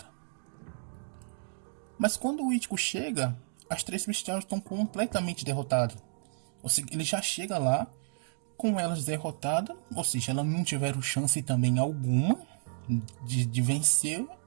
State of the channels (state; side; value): silent; left; digital silence